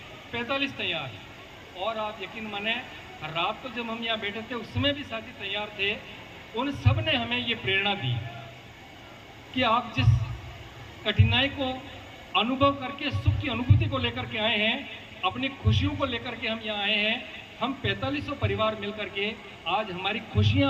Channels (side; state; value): both; identical; correlation 1.00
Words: 45 तैयार। और आप यकीन माने, रात को जब हम यहाँ बैठे थे उसमें भी साथी तैयार थे। उन सब ने हमें ये प्रेरणा दी कि आप जिस कठिनाई को अनुभव करके सुख की अनुभूति को लेकर के आए हैं, अपनी खुशियों को लेकर के हम यहाँ आए हैं। हम 4500 परिवार मिलकर के आज हमारी